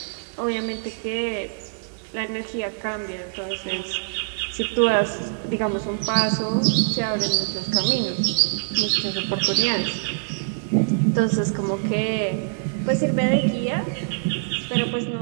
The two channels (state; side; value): silent; left; 60 dB below the other